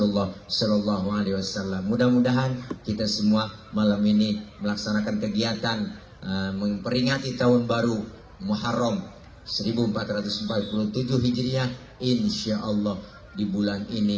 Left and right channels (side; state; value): both; identical; correlation 1.00